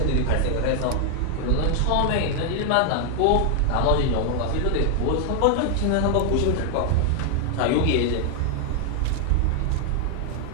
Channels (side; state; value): both; different; correlation 0.00